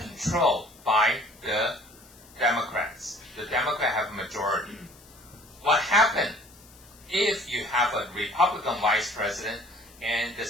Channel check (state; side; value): noise; left; hiss, 24 dB below the sound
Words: by the Democrats. The Democrats have a majority. What happened if you have a Republican vice president and the